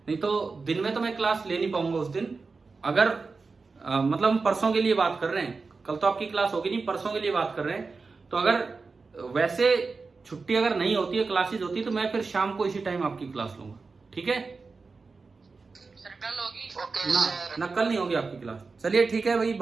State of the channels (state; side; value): quieter; left; 4.3 dB